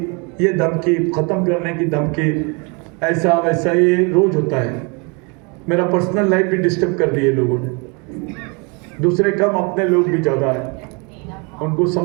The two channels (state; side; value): quieter; left; 31.8 dB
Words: ये धमकी, खत्म करने की धमकी, ऐसा वैसा, ये रोज होता है। मेरा पर्सनल लाइफ भी डिस्टर्ब कर दिए लोगों ने, दूसरे कम, अपने लोग भी ज्यादा है। उनको